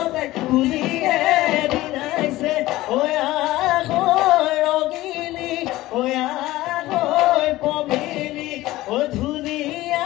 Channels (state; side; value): quieter; right; 17.2 dB